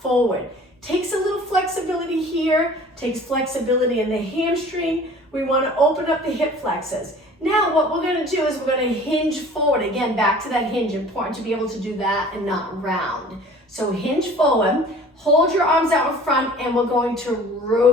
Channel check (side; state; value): both; normal; correlation 0.46